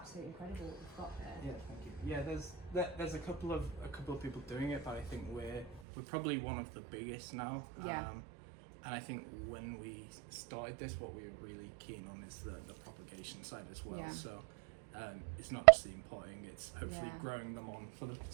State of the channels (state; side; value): drops out; left; at 5.7 s